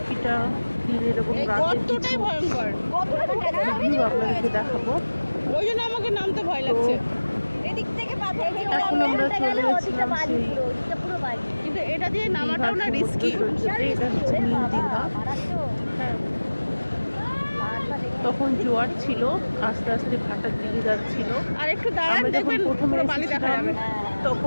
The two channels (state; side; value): inverted; both; correlation -1.00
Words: দিনের এবং রাতের কিছু ভিউ আপনাদেরকে দেখাবো। ওই জন্য আমাকে নামতে ভয় লাগছে। এখন আমরা চলে গেছিলাম সেই কিন্তু এটা দিয়ে নামাটাও না রিস্কি। এটা হচ্ছে নীল দীঘা। হ্যাঁ, তখন জোয়ার ছিল, আস্তে আস্তে ভাটার দিকে যাচ্ছিল। আর একটু দাঁড়ান, দেখবেন পুরো বালি দেখা যাবে।